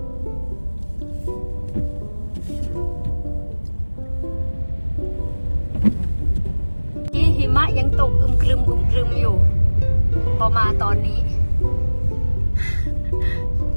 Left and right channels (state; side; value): inverted; both; correlation -1.00